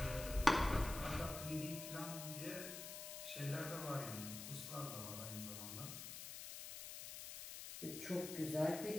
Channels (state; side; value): noise; left; hiss, 8 dB below the sound